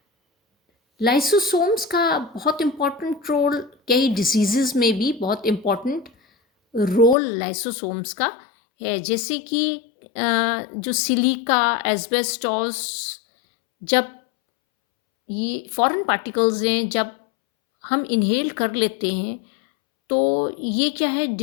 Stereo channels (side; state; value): right; drops out; at 7.2 s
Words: लाइसोसोम्स का बहुत इम्पॉर्टेंट रोल, कई डिजीजेस में भी बहुत इम्पॉर्टेंट रोल लाइसोसोम्स का है। जैसे कि जो सिलिका, एस्बेस्टॉस, जब ये फॉरेन पार्टिकल्स हैं जब हम इनहेल कर लेते हैं तो ये क्या है,